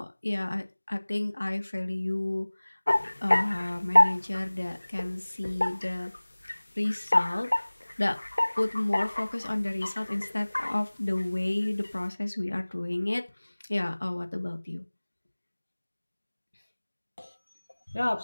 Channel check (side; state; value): both; inverted; correlation -1.00